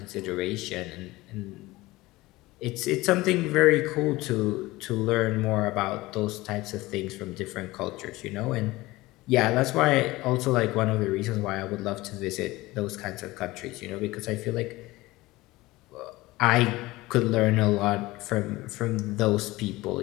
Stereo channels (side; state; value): right; quieter; 19.7 dB